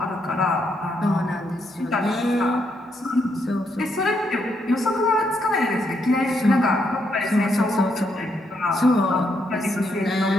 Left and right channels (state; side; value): normal; both; correlation 0.77